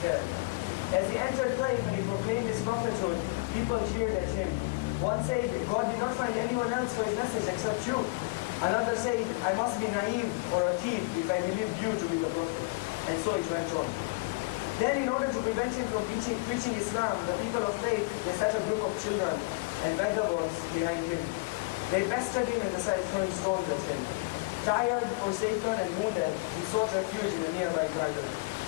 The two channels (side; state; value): right; quieter; 27.0 dB